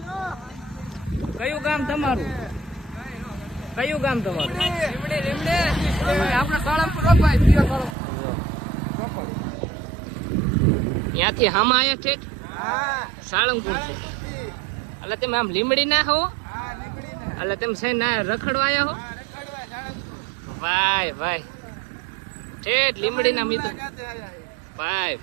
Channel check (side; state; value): left; drops out; at 8.0 s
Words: કયું ગામ તમારું? કયું ગામ તમારું? આપણે સાળંગપુર ત્યાંથી હામાં આવ્યા છે સાળંગપુર છે. એટલે તમે આમ લીમડી ના હો? એટલે તમે છે ના રખડવા આવ્યા હો? ભાઈ ભાઈ ઠેઠ લીમડી ના મિત્રો. ભાઈ